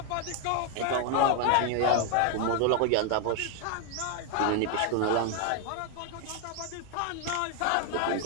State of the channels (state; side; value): different; both; correlation 0.01